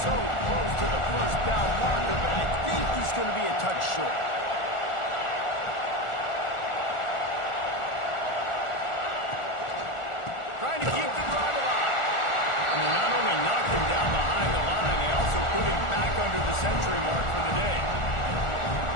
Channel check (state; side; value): late; right; 1.4 ms